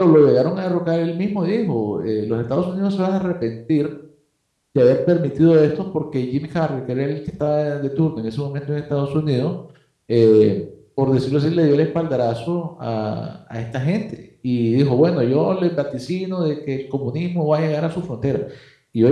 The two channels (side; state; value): both; identical; correlation 1.00